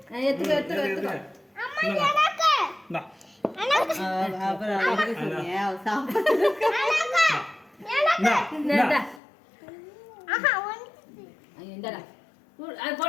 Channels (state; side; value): drops out; right; at 9.2 s